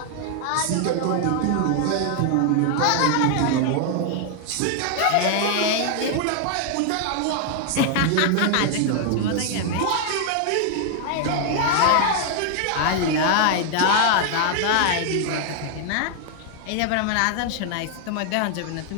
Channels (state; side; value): different; both; correlation 0.00